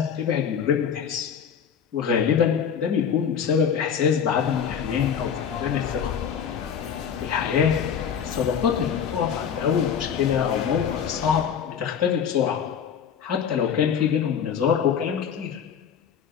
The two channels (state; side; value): quieter; right; 7.7 dB